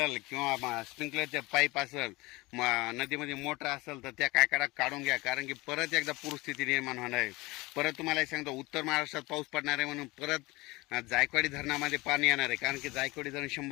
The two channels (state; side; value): quieter; right; 22.5 dB